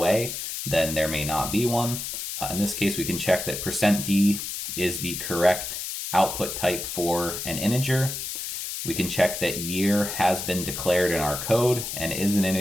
then there may not be one. In this case, we can check that %d is the correct output type for an integer. We can check that year has been declared in our code and is an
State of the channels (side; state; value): left; noise; hiss, 5 dB below the sound